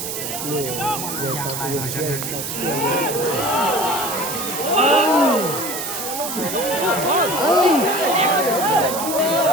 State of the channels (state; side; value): noise; right; hiss, 5 dB below the sound